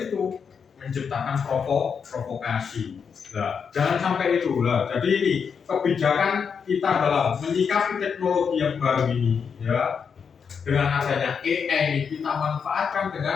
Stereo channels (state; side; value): quieter; right; 6.4 dB